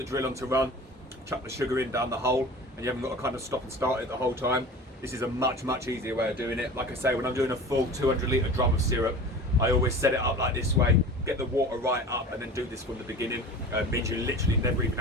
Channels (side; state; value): both; normal; correlation 0.37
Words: drill on to run, chuck the sugar in down the hole, and you haven't got to kind of stop and start it the whole time. This is a much easier way of doing it. Like I say, when I'm doing a full 200 litre drum of syrup, I always set it up like this way, get the water right up and then do this from the beginning. Means you literally never even